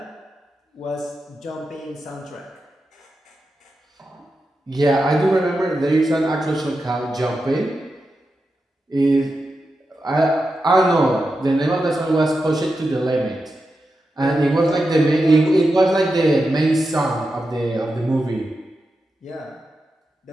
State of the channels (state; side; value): normal; both; correlation 0.89